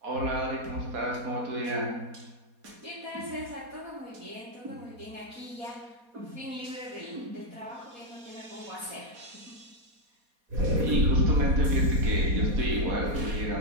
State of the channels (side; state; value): left; late; 4.2 ms